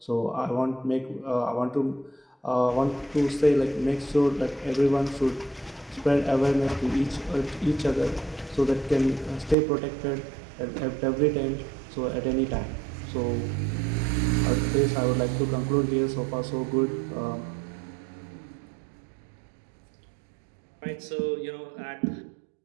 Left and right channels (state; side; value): drops out; left; at 9.6 s